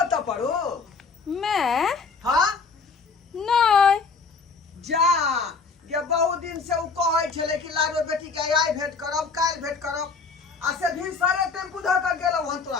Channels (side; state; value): right; quieter; 4.8 dB